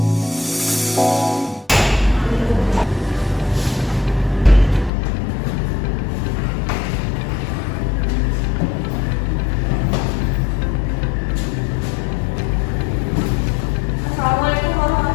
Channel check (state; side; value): drops out; right; at 4.9 s